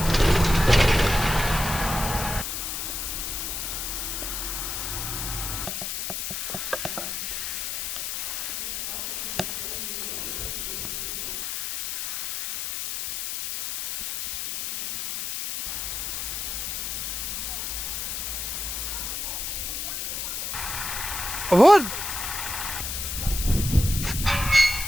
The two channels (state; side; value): noise; left; hiss, 3 dB below the sound